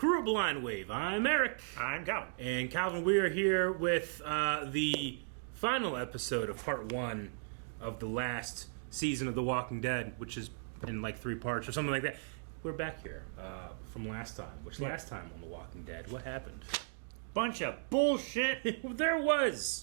of Blind Wave. I'm Eric. I'm Calvin. And Calvin, we are here with the final episode of part 1 of the last season of The Walking Dead, which is in like 3 parts or something like that. We're back here from last time. Last time on The Walking Dead, what happened? Bunch of bullshit. There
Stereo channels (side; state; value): left; silent; digital silence